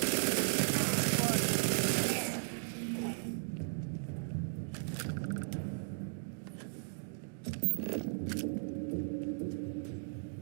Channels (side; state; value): left; silent; digital silence